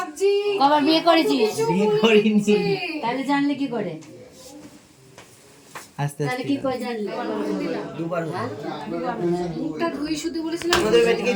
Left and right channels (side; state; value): both; identical; correlation 1.00